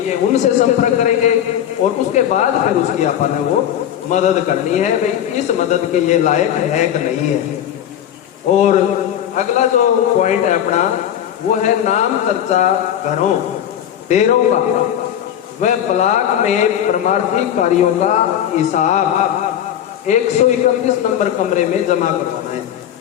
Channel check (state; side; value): quieter; right; 10.4 dB